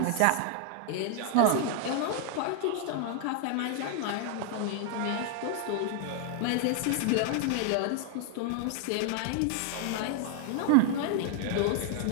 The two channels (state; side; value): different; both; correlation 0.00